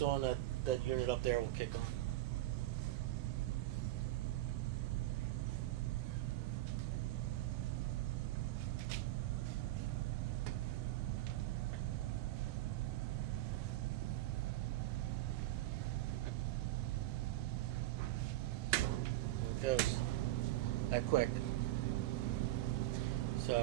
on, that unit up there will kick on. There it goes. That quick.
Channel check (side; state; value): left; quieter; 15.9 dB